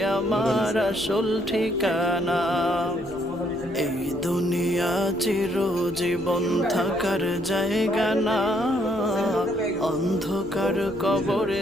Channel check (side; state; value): left; noise; rumble, 20 dB below the sound